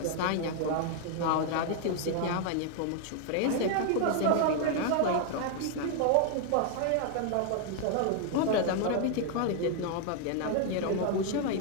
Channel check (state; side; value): different; both; correlation 0.00